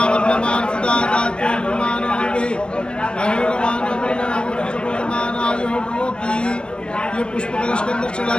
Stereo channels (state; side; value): late; right; 0.052 ms